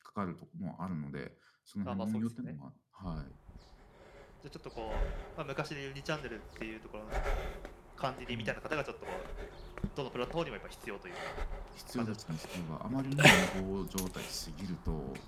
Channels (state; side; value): identical; both; correlation 1.00